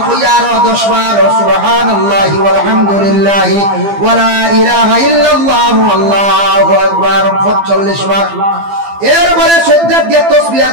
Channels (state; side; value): late; left; 15 ms